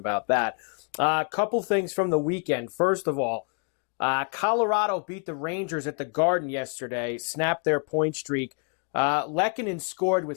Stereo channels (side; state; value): right; quieter; 39.4 dB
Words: that. A couple things from the weekend. First of all, Colorado beat the Rangers at the Garden yesterday, snapped their point streak. Lehkonen scored